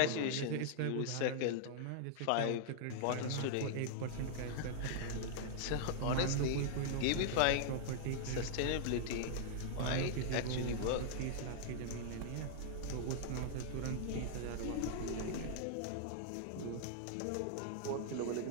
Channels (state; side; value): different; both; correlation -0.01